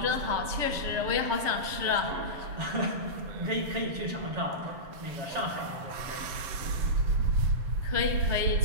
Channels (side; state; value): left; late; 7.3 ms